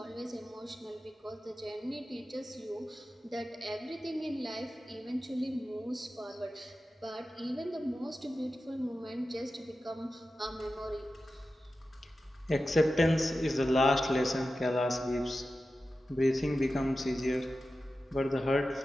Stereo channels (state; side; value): normal; both; correlation 0.93